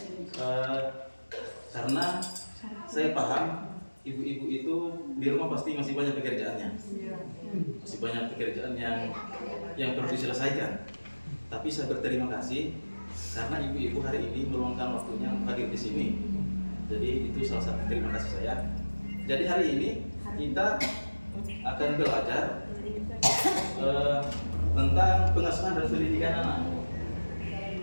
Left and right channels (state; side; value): inverted; both; correlation -1.00